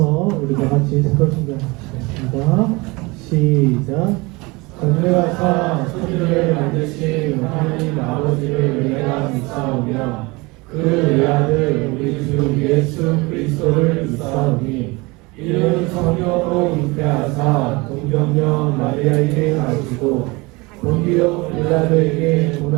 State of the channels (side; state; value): left; quieter; 24.7 dB